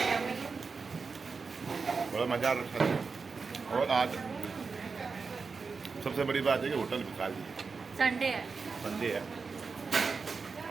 बड़ा मज़ा आ रहा है। और आज सबसे बड़ी बात है कि होटल भी खाली है, संडे है। संडे है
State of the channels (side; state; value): left; quieter; 4.8 dB